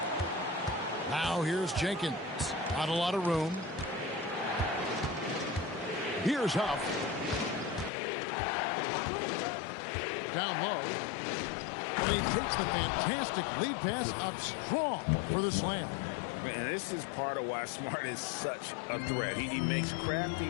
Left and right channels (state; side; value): drops out; right; at 7.9 s